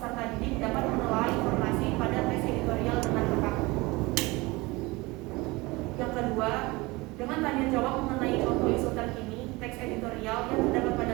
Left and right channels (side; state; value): left; quieter; 22.9 dB